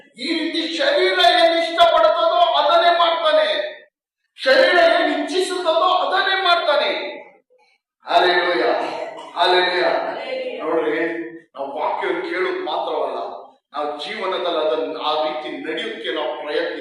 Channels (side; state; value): both; identical; correlation 1.00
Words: ಈ ರೀತಿ ಶರೀರ ಏನ್ ಇಷ್ಟಪಡುತ್ತದೋ ಅದನ್ನೇ ಮಾಡ್ತಾನೆ, ಶರೀರ ಏನ್ ಇಚ್ಛಿಸುತ್ತದೋ ಅದನ್ನೇ ಮಾಡ್ತಾನೆ. Hallelujah, hallelujah. ನೋಡ್ರಿ, ನಾವು ವಾಕ್ಯವನ್ನು ಕೇಳೋದು ಮಾತ್ರವಲ್ಲ, ನಾವು ಜೀವನದಲ್ಲಿ ಅದನ್ನು ಆ ರೀತಿ ನಡೆಯೋಕೆ ನಾವು